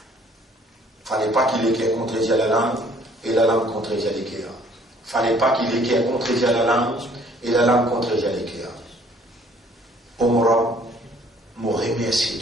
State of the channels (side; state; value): both; normal; correlation 0.59